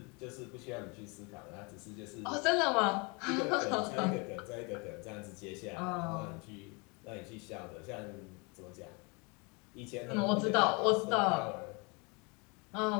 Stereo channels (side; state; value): right; quieter; 30.2 dB